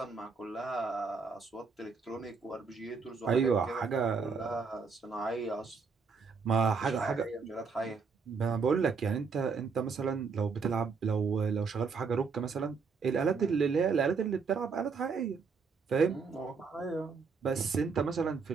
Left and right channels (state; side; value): quieter; left; 5.2 dB